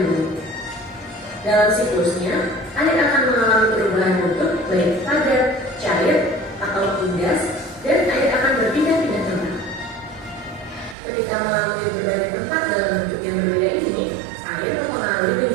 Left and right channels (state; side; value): drops out; left; at 11.0 s